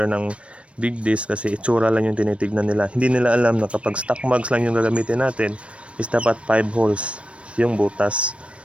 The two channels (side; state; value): left; late; 0.061 ms